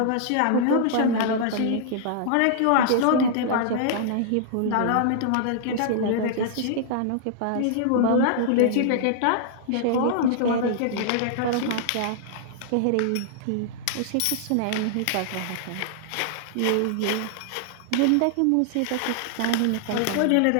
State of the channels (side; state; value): both; different; correlation -0.01